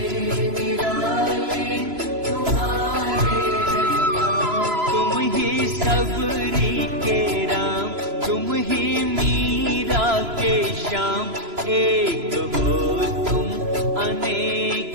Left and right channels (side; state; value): left; late; 3.0 ms